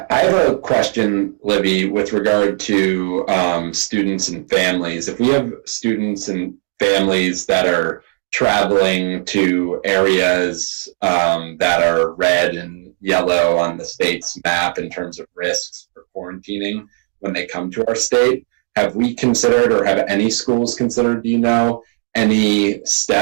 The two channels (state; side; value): silent; left; 55 dB below the other